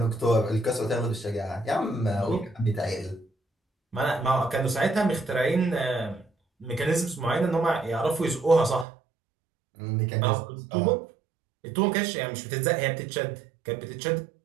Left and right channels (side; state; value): left; drops out; at 8.8 s